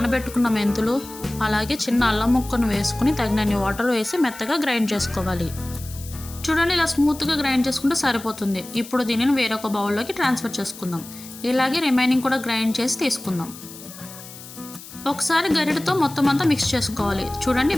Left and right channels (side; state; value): left; noise; hiss, 16 dB below the sound